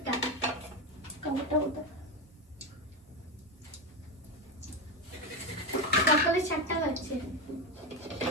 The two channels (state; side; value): normal; both; correlation 0.14